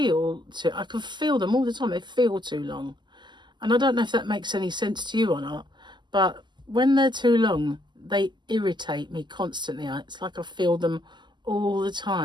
I can feel them all the time. They feel too long. And I don't know if that makes any sense to you or not, but when they're too long, they irritate me constantly. It's like I feel them all the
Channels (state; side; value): late; left; 0.21 ms